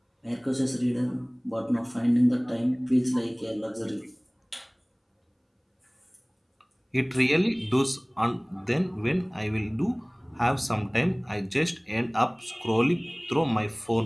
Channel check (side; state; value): both; identical; correlation 1.00